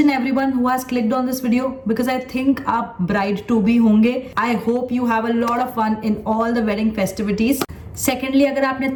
everyone who has clicked on this video because I think आप bride to be होंगे. I hope you have a lot of fun in all the wedding festivities. Secondly, अगर आपने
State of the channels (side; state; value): both; identical; correlation 1.00